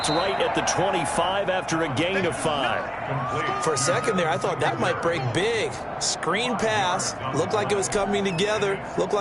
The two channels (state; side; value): identical; both; correlation 1.00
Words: right at the 25 after a gain of 5. For a second there, I thought that might break big. Screen pass. Looked like it was coming together. Looked